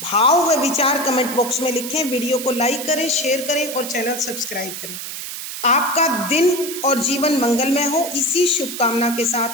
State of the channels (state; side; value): noise; right; hiss, 8 dB below the sound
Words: भाव व विचार कमेंट बॉक्स में लिखें, वीडियो को लाइक करें, शेयर करें और चैनल सब्सक्राइब करें। आपका दिन और जीवन मंगलमय हो, इसी शुभकामना के